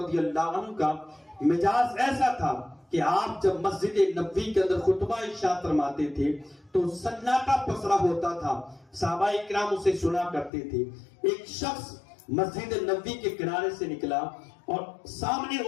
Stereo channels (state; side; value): drops out; right; at 10.5 s